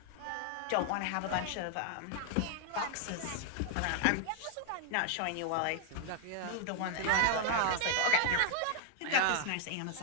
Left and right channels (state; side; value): different; both; correlation -0.01